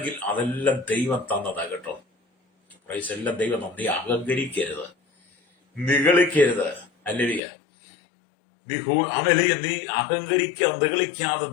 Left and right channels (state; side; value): drops out; right; at 7.4 s